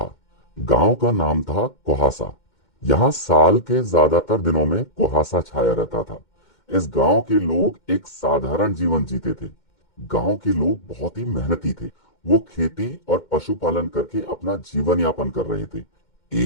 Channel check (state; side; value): late; right; 2.1 ms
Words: गांव का नाम था कुहासा। यहाँ साल के ज्यादातर दिनों में कुहासा छाया रहता था। इस गांव के लोग एक साधारण जीवन जीते थे। गांव के लोग बहुत ही मेहनती थे। वो खेती और पशुपालन करके अपना जीवन यापन कर रहे थे।